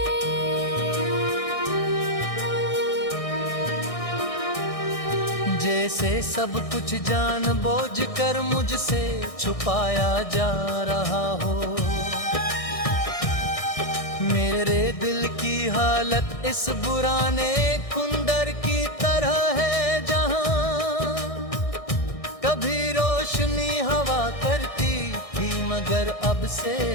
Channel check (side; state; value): right; late; 1.6 ms